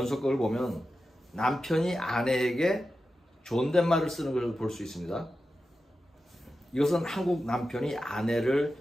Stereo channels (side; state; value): both; normal; correlation 0.92